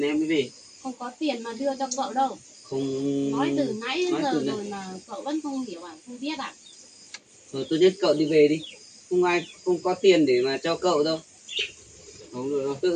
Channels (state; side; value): identical; both; correlation 1.00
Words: em mới về. Không có tiền mà đưa cho cậu đâu. Không Nói từ nãy đến nói giờ từ này. rồi mà cậu vẫn không hiểu à, không biết à? Thôi tốt nhất cậu đi về đi, không ai không có tiền để mà cho cậu đâu. Không được đâu,